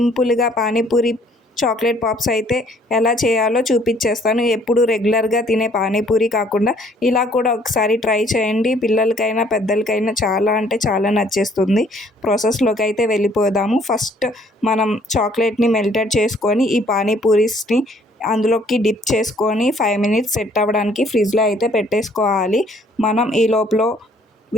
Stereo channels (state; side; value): normal; both; correlation 0.61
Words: panipuri chocolate pops అయితే ఎలా చేయాలో చూపించేస్తాను. ఎప్పుడు రెగ్యులర్గా తినే పానీపూరి కాకుండా ఇలా కూడా ఒకసారి ట్రై చేయండి. పిల్లలకైనా పెద్దలకైనా చాలా అంటే చాలా నచ్చేస్తుంది. ప్రాసెస్లోకి అయితే వెళ్ళిపోదాము. ఫస్ట్ మనం చాక్లెట్ని మెల్టెడ్ చేసుకొని ఈ పానీపూరీస్ని అందులోకి డిప్ చేసుకొని 5 మినిట్స్ సెట్ అవ్వడానికి ఫ్రిడ్జ్లో అయితే పెట్టేసుకోవాలి. మనం ఈ లోపల